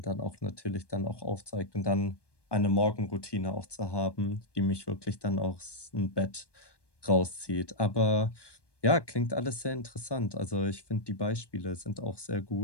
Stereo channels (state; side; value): late; right; 1.2 ms